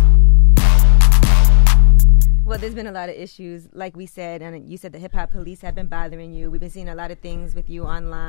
Well, there's been a lot of issues, like we said, and you said the hip-hop police have been bothering you. We've been seeing a lot of things with you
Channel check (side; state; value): right; silent; digital silence